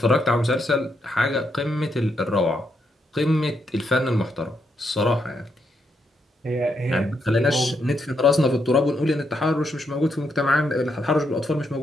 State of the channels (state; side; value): normal; both; correlation 0.79